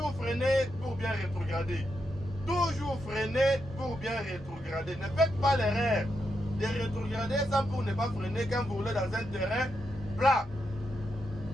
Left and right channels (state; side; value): normal; both; correlation 0.84